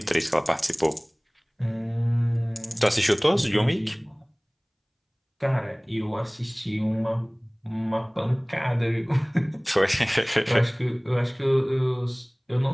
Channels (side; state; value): both; identical; correlation 1.00